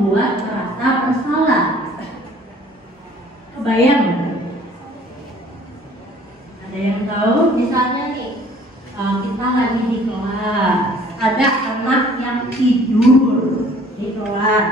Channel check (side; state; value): both; normal; correlation 0.54